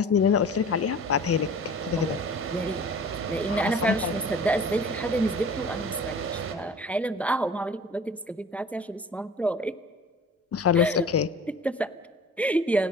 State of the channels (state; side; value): normal; both; correlation 0.43